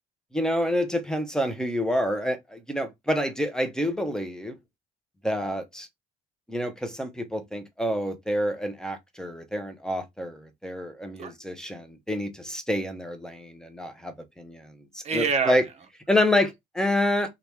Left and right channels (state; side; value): normal; both; correlation 0.77